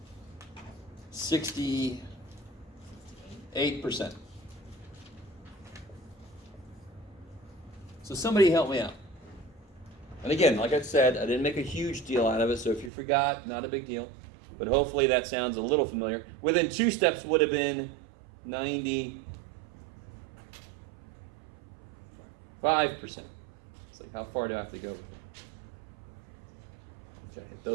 68%. So somebody help me out. And again, like I said, I didn't make a huge deal out of it, so if you forgot, not a big deal. But hopefully that sounds a little familiar. Within 2 steps would have been 95%. It's like, how far do I have to go? Okay, if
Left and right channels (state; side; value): drops out; left; at 12.9 s